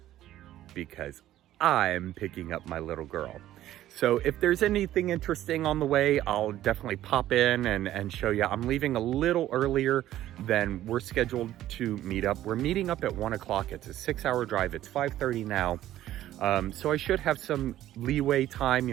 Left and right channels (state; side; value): quieter; left; 13.4 dB